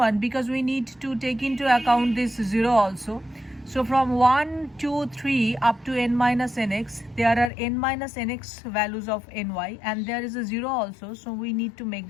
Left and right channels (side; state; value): right; drops out; at 7.5 s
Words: Because we need to take into account this 0 also. So from 1, 2, 3 up to n minus nx, there are n minus nx values of ny, and there is a 0 also, so we need to make